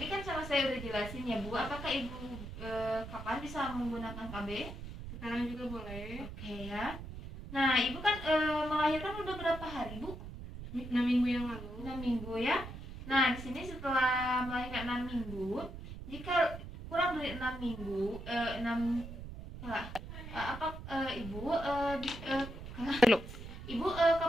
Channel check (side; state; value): right; noise; rumble, 10 dB below the sound